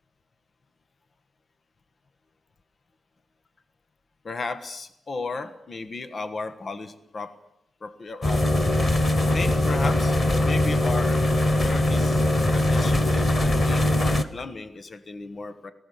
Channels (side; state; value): both; normal; correlation 0.90